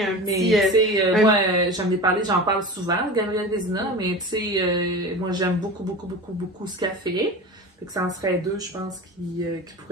un petit... moi, j'en ai parlé, j'en parle souvent, Gabrielle Vézina, mais tu sais, moi j'aime beaucoup ce qu'elle fait. Fait que ça en serait 2, je pense, qui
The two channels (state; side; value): normal; both; correlation 0.31